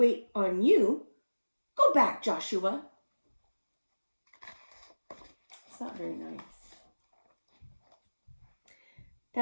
on you. Go back, Joshua." It's not very nice.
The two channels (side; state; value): both; inverted; correlation -1.00